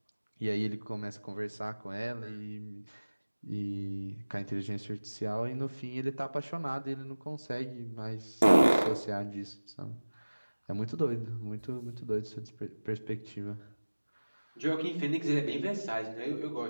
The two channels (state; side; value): inverted; both; correlation -1.00